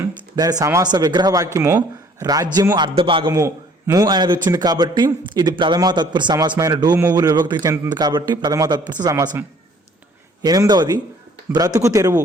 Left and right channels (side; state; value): both; normal; correlation 0.57